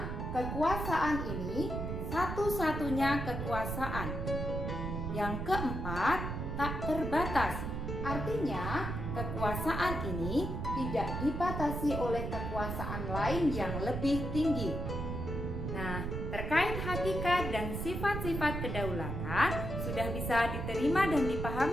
kekuasaan ini satu-satunya kekuasaan. Yang keempat, tak terbatas. Artinya, kekuasaan ini tidak dibatasi oleh kekuasaan lain yang lebih tinggi. Nah, terkait hakikat dan sifat-sifat kedaulatan sudah bisa diterima dan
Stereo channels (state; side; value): noise; right; rumble, 3 dB below the sound